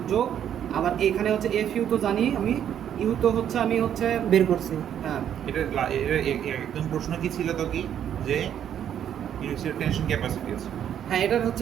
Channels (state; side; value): quieter; left; 9.7 dB